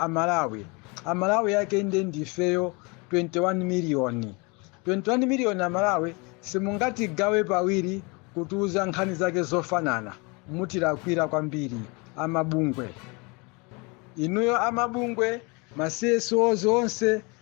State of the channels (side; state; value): right; quieter; 29.1 dB